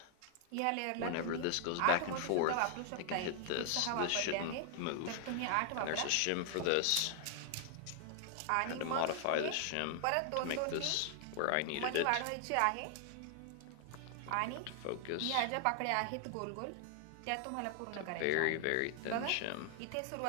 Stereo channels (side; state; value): both; different; correlation 0.00